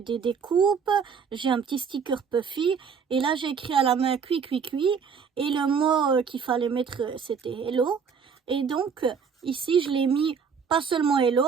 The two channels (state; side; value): quieter; left; 6.3 dB